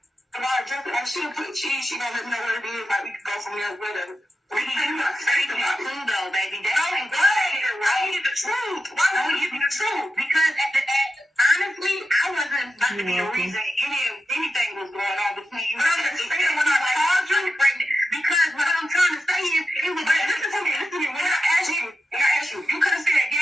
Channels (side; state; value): both; normal; correlation 0.89